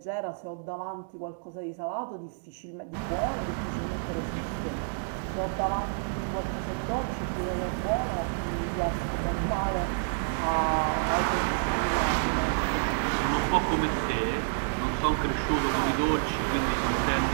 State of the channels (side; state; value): left; silent; digital silence